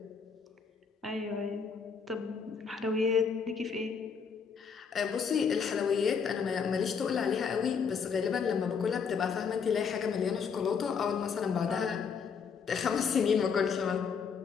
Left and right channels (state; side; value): quieter; right; 6.2 dB